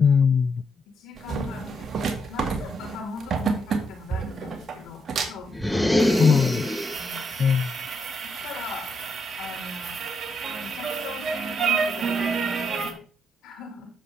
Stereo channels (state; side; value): normal; both; correlation 0.78